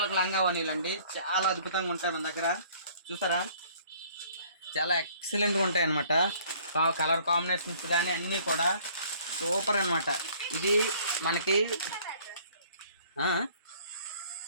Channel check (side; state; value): both; inverted; correlation -0.56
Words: లంగా వనీలండి చాలా అద్భుతంగా ఉంటాయి మన దగ్గర. చూసారా చాలా ఎక్సలెంట్గా ఉంటాయి అన్నమాట. కలర్ కాంబినేషన్స్ కానీ అన్నీ కూడా సూపర్ అనమాట. ఇది